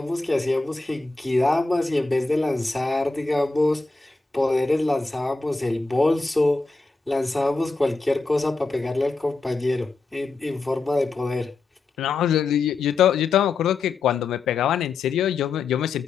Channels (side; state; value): right; quieter; 3.8 dB